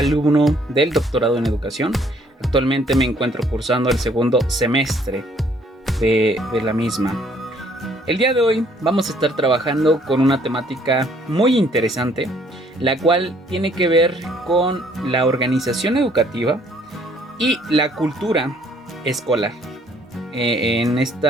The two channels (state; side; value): normal; both; correlation 0.63